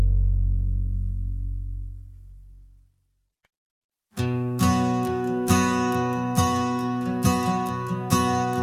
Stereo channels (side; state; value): both; identical; correlation 1.00